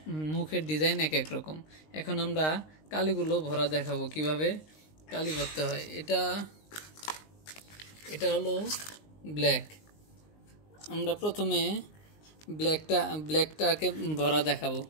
মুখের ডিজাইন এক এক রকম। এখন আমরা কালিগুলো ভরা দেখাবো কিভাবে কালি ভরতে হয়। এটা হলো ব্ল্যাক। আমরা প্রথমে ব্ল্যাকটাকে ভরা দেখাবো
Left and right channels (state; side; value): late; right; 19 ms